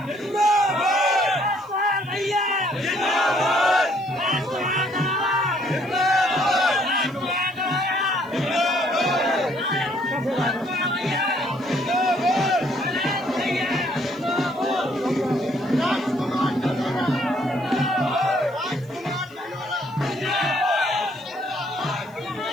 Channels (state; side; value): noise; right; hiss, 29 dB below the sound